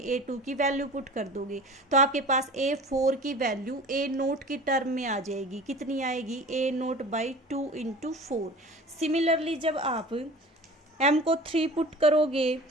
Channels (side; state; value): both; normal; correlation 0.40